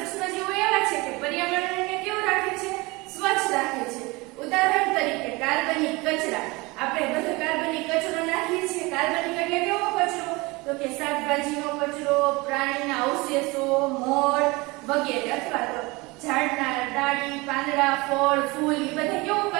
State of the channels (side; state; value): left; quieter; 24.1 dB